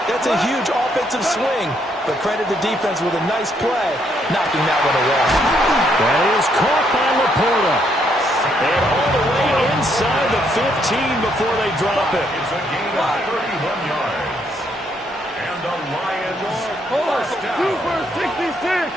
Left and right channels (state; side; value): normal; both; correlation 0.72